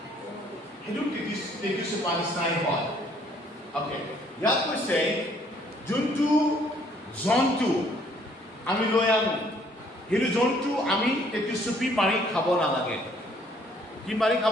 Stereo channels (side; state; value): both; normal; correlation 0.63